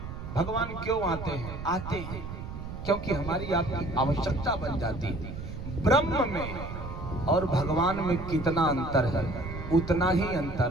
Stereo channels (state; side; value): noise; right; rumble, 9 dB below the sound